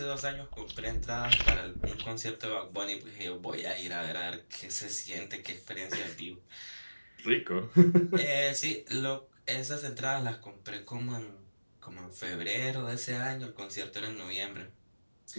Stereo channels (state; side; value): inverted; both; correlation -1.00